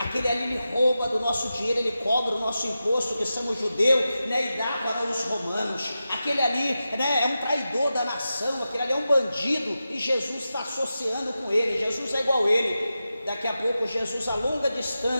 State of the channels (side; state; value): both; inverted; correlation -0.92